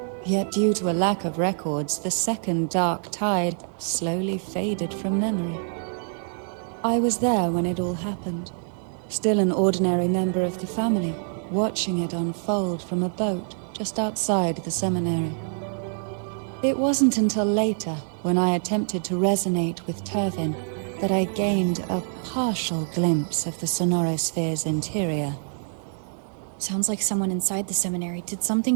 Yet due to a lack of records, the second dark tide slowly faded from memory. I was there when it all happened. Still an ordinary member of the family, watching it unfold from a boat just outside the seminary. It wasn't until later, when I attempted to resonate with Turvin, that I gained a partial glimpse of the Sonorosphere's interior. Sounds like someone inside the seminary did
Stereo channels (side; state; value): left; silent; 61 dB below the other